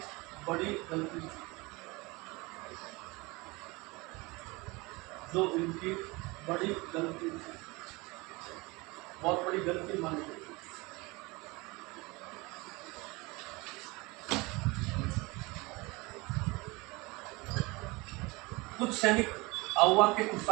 बड़ी गलती थी। जो इनकी बड़ी गलती थी। बहुत बड़ी गलती मानी गई। कुछ सैनिक आउवा के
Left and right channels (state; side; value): quieter; left; 24.4 dB